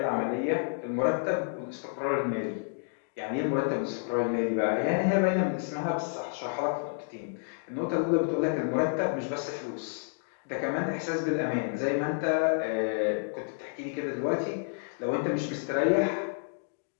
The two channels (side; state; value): right; silent; digital silence